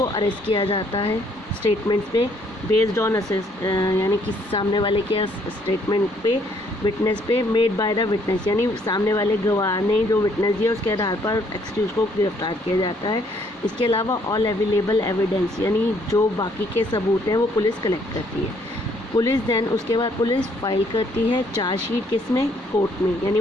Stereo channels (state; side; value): normal; both; correlation 0.66